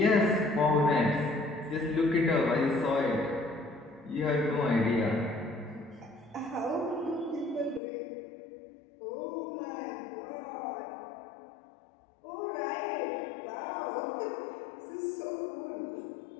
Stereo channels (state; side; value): drops out; right; at 7.8 s